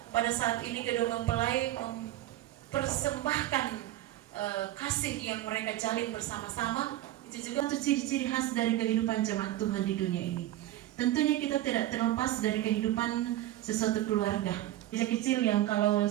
pada saat ini kedua mempelai mempersembahkan kasih yang mereka jalin bersama-sama, itu juga satu ciri-ciri khas dari kehidupan jemaat Tuhan di dunia ini. Tentunya kita tidak terlepas dari kehidupan sesuatu keluarga. Kecil yang kalau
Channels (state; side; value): quieter; left; 14.5 dB